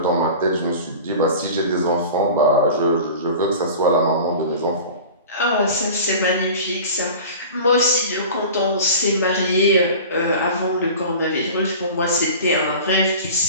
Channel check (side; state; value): both; inverted; correlation -0.37